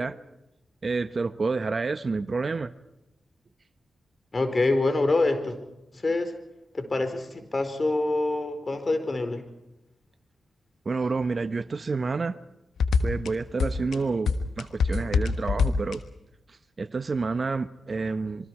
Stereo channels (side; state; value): both; normal; correlation 0.89